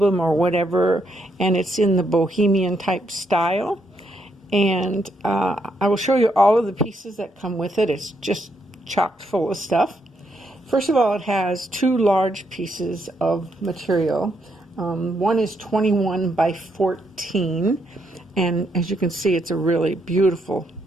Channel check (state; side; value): normal; both; correlation 0.77